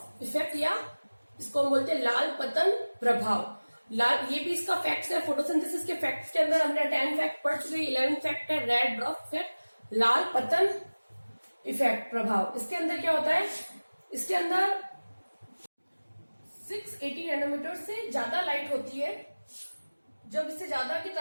effect, या इसको हम बोलते हैं लाल पतन प्रभाव। लाल, ये भी इसका फैक्ट्स है। फोटोसिंथेसिस के फैक्ट्स के अंदर हमने 10 फैक्ट पढ़ चुके, 11 फैक्ट है रेड ड्रॉप इफेक्ट, लाल पतन इफेक्ट प्रभाव। इसके अंदर क्या होता है, इसके अंदर 680 नैनोमीटर से ज्यादा लाइट होती है। जब इससे ज्यादा की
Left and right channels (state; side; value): inverted; both; correlation -1.00